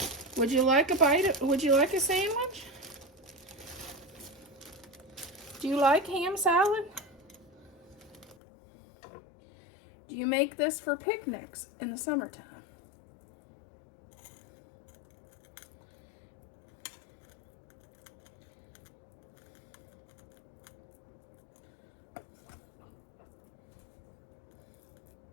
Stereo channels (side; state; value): right; drops out; at 8.3 s